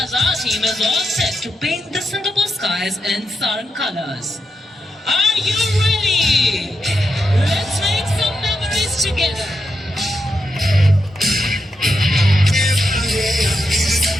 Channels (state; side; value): normal; both; correlation 0.85